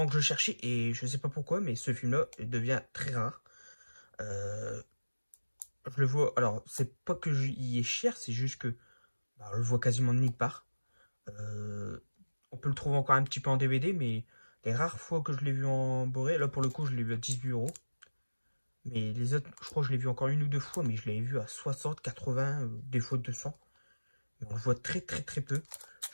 que je cherchais et je sais pas pourquoi, mais ce film-là devient très rare. Euh, je le vois. Alors, c'est pas que il est cher, c'est juste que bah, on le voit quasiment de nulle part. Euh, on peut le trouver encore un petit peu en DVD, mais les rares fois que je l'ai vu en Boré, là pour le coup, je l'ai vu à 18 €. Mais les autres, je crois que je l'ai vu encore une ou deux fois, mais je l'avais vu à 60, 80, des fois 200. Mais on le voit très très très peu.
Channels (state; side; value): inverted; both; correlation -1.00